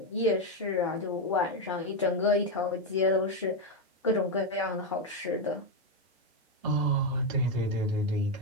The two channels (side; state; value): both; normal; correlation 0.06